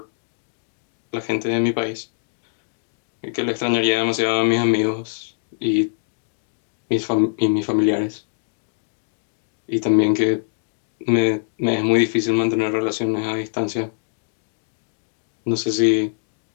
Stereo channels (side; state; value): right; silent; digital silence